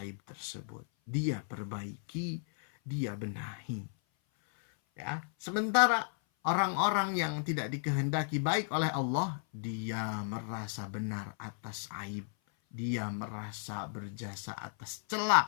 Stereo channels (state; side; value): silent; right; 55 dB below the other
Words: aib tersebut, dia perbaiki, dia benahi. Ya, sementara orang-orang yang tidak dikehendaki baik oleh Allah, dia merasa benar atas aib, dia merasa berjasa atas celah,